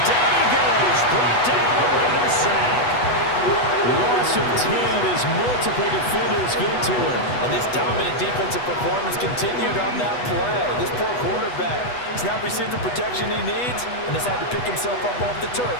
down he goes. Brought down a Raider sack. Loss of 10 as multiple defenders get to him. And this dominant defensive performance continued on that play. This poor quarterback has not received the protection he needs and has had to pick himself up off the turf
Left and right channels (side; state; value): right; late; 8.2 ms